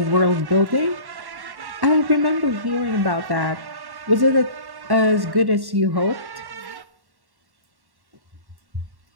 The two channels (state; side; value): late; left; 1.1 ms